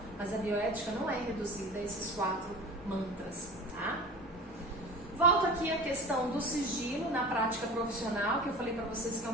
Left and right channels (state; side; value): normal; both; correlation 0.36